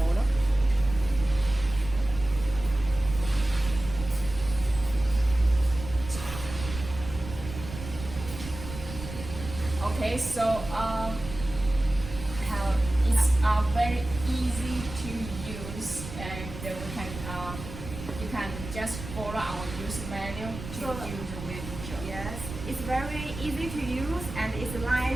Okay, so how it's very easy to use, and we can you can just follow our use manual to So- use the welding job. Yes, it's very easy to use and it's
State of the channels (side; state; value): right; noise; rumble, 10 dB below the sound